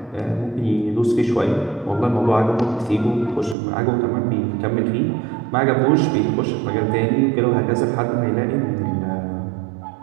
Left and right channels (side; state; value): left; drops out; at 3.6 s